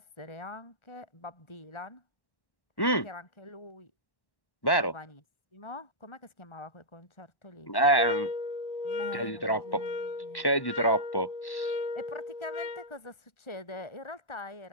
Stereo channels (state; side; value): late; right; 1.1 ms